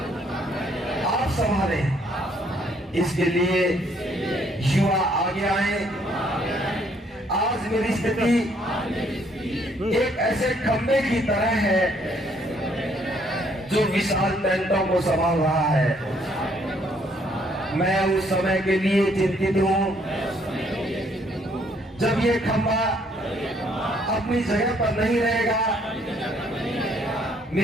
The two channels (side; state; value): both; normal; correlation 0.67